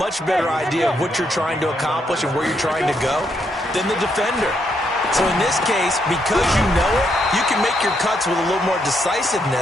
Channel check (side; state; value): both; normal; correlation 0.77